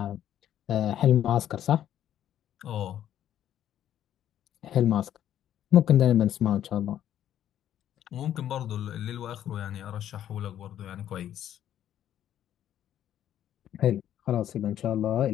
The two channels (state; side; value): quieter; right; 11.1 dB